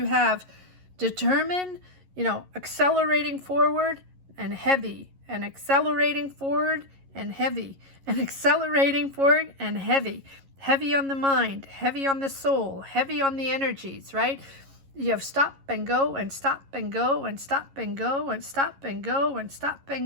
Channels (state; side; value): late; left; 11 ms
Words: have determined, accelerating forward, and heavy. And accelerating forward and heavy, and accelerating forward and heavy. Heavy on the mind, heavy on the soul, heavy on the energies, right? You have stop and go and stop and go and stop and go and stop and go and stop